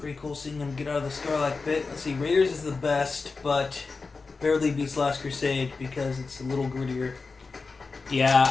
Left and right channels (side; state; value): right; quieter; 4.2 dB